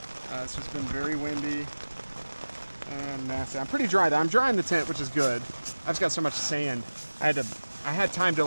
It's just been very windy and nasty. I'm pretty dry though. I'm dry in the tent, which is good. I've just got so much sand. I had time to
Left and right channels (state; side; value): inverted; both; correlation -1.00